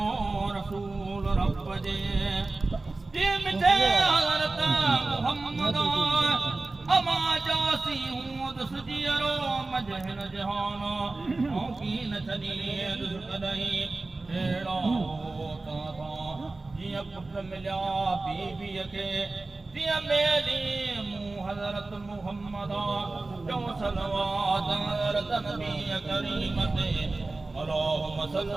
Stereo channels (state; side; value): quieter; left; 3.3 dB